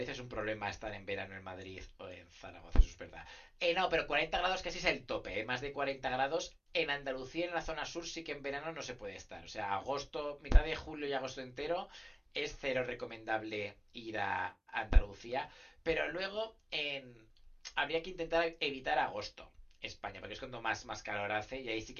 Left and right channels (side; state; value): both; identical; correlation 1.00